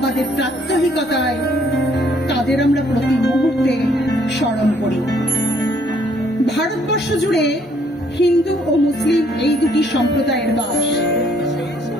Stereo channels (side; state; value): both; normal; correlation 0.64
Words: প্রাত্যহিকতায় তাদের আমরা প্রতি মুহূর্তে স্মরণ করি। ভারতবর্ষ জুড়ে হিন্দু ও মুসলিম এই দুটি সম্প্রদায়ের বাস।